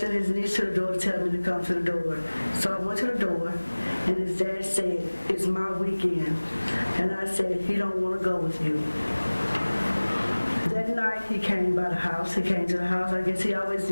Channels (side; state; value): both; inverted; correlation -1.00